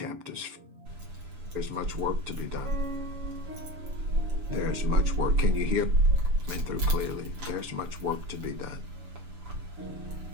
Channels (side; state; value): left; late; 6.9 ms